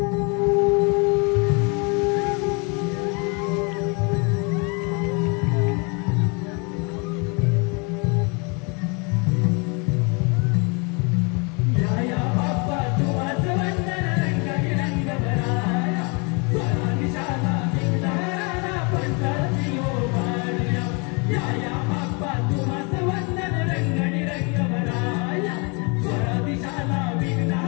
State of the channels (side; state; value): right; quieter; 32.3 dB